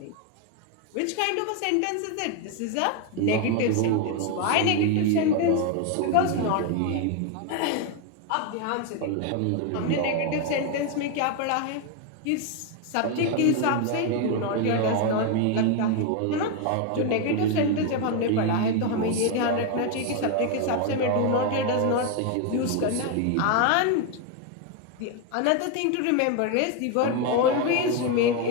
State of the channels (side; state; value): both; different; correlation 0.01